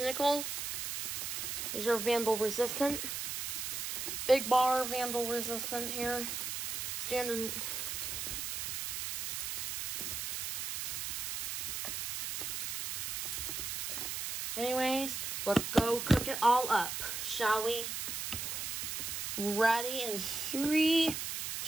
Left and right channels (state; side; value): noise; right; hiss, 3 dB below the sound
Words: These are vandal resistant. Big bar vandal resistant here. Standard. Anyways, let's go cook it all up, shall we? Ready in 3,